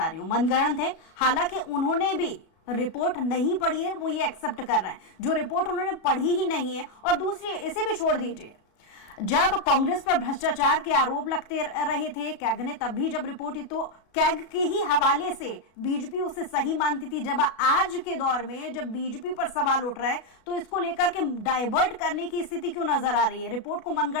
रही हूं, मनगढ़ंत है। हालांकि उन्होंने भी रिपोर्ट नहीं पढ़ी है, वो ये एक्सेप्ट कर रहे हैं। जो रिपोर्ट उन्होंने पढ़ी ही नहीं है। और दूसरी, इसे भी छोड़ दीजिए, जब कांग्रेस पर भ्रष्टाचार के आरोप लगते रहे थे कैग ने, तब भी जब रिपोर्ट ही तो कैग के ही हवाले से बीजेपी उसे सही मानती थी। जब आज के दौर में जब बीजेपी पर सवाल उठ रहा है तो इसको लेकर के डाइवर्ट करने की स्थिति क्यों नजर आ रही है? रिपोर्ट को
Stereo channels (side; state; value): right; late; 37 ms